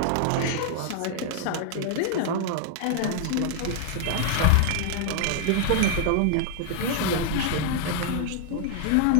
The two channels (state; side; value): different; both; correlation 0.00